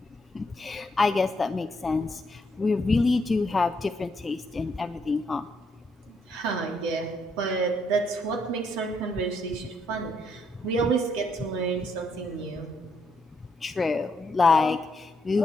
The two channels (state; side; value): normal; both; correlation 0.75